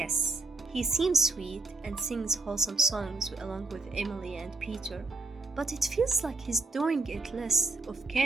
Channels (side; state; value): left; quieter; 3.4 dB